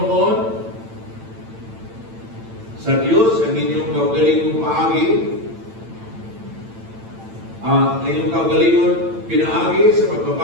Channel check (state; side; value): late; left; 8.9 ms